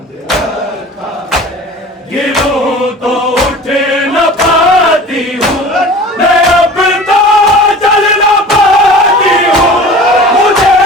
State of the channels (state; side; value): normal; both; correlation 0.40